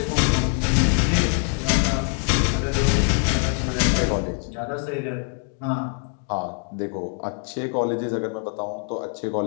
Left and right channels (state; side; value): quieter; right; 37.5 dB